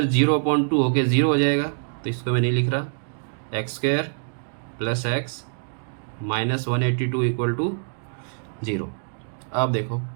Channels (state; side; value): silent; left; digital silence